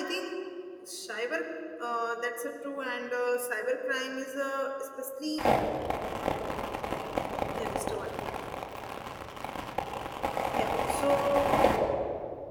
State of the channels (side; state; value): both; identical; correlation 1.00